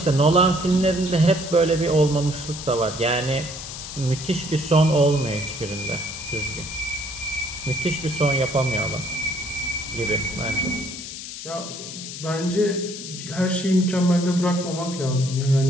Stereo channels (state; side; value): noise; left; hiss, 10 dB below the sound